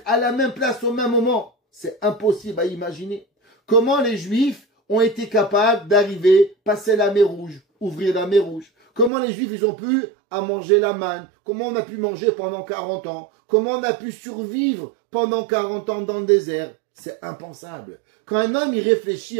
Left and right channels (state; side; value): drops out; left; at 9.1 s